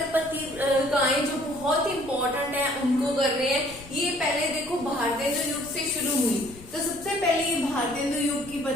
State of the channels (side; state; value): left; noise; rumble, 19 dB below the sound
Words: पत्रिकाएं जो बहुत इंपॉर्टेंट है उनको कर रहे हैं। ये पहले देखो भारतेंदु युग से शुरू हुई, तो सबसे पहले ये भारतेंदु युग की